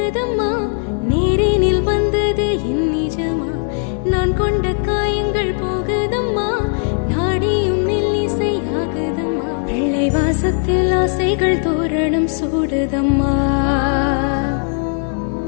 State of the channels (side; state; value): right; silent; 57 dB below the other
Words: நேரினில் வந்தது என் நிஜமா. நான் கொண்ட காயங்கள் போகுதம்மா, நாடியும் மெல்லிசை ஆகுதம்மா. பிள்ளை வாசத்தில் ஆசைகள் தோரணம் சூடுதம்மா.